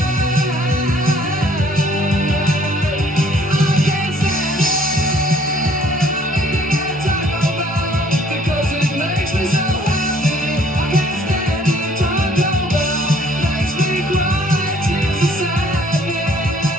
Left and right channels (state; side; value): normal; both; correlation 0.60